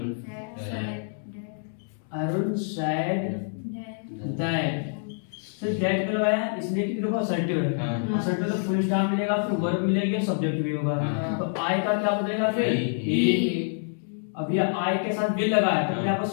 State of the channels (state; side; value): silent; right; 60 dB below the other